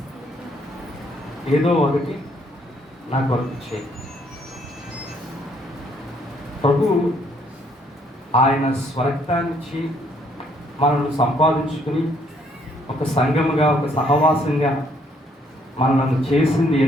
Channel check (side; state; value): both; normal; correlation 0.67